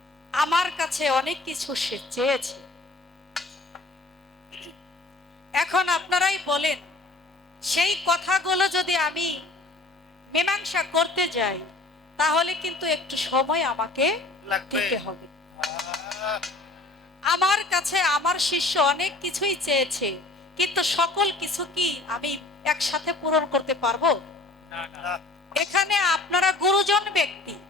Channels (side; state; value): right; quieter; 3.1 dB